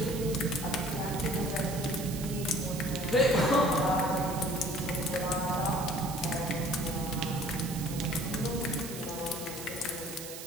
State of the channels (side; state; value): right; noise; hiss, 10 dB below the sound